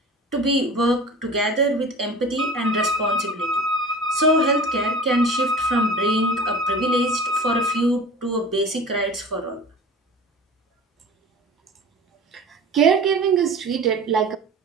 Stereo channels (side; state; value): both; normal; correlation 0.39